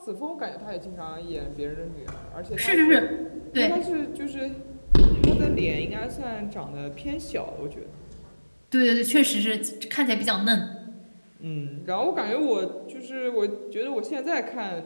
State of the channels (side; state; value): both; inverted; correlation -1.00